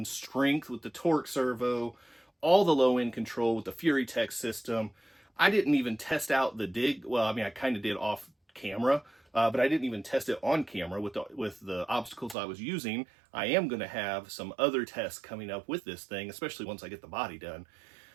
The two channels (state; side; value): drops out; left; at 12.4 s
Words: strength with the torque servo, all the low end control with the Furitek system. I didn't even test out the Dig. Well, I mean, I kind of did off camera, but I didn't even test it on camera with the obstacles I was using. I am going to have some other tests coming up with this thing, especially once I get the body done.